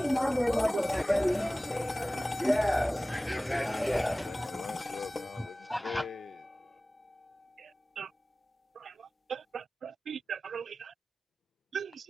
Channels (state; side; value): normal; both; correlation 0.97